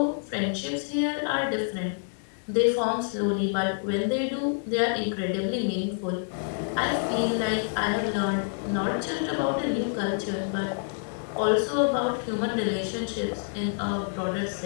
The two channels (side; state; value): right; silent; digital silence